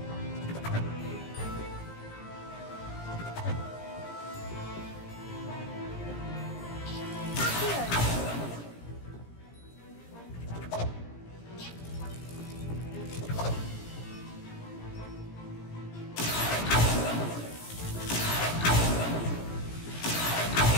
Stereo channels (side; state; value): right; late; 17 ms